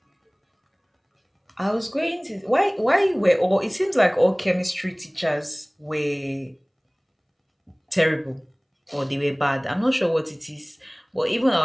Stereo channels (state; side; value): identical; both; correlation 1.00